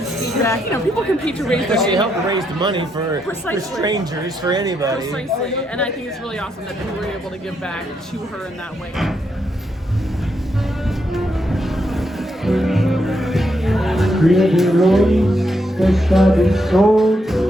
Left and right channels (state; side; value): normal; both; correlation 0.79